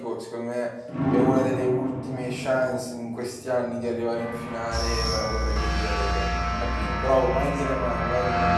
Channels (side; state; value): both; identical; correlation 1.00